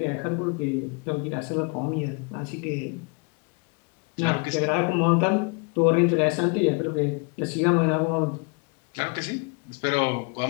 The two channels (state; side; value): quieter; right; 33.1 dB